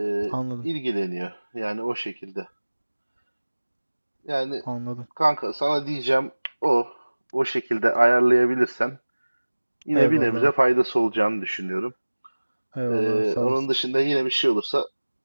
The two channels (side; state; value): both; inverted; correlation -1.00